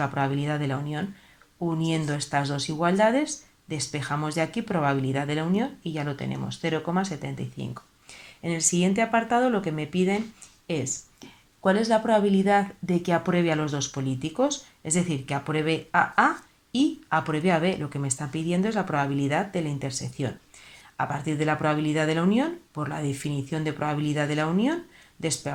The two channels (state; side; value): identical; both; correlation 1.00